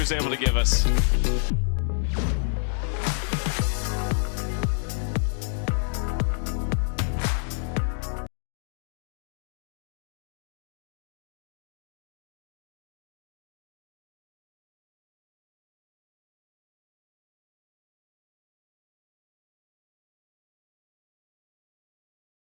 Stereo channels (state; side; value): silent; right; 57 dB below the other